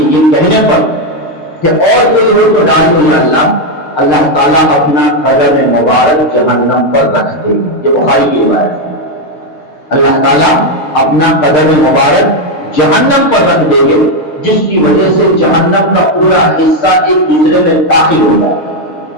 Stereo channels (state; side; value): late; right; 6.6 ms